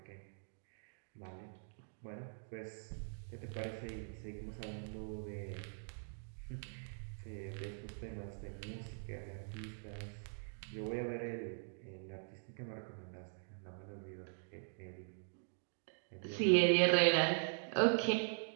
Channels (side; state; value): left; silent; digital silence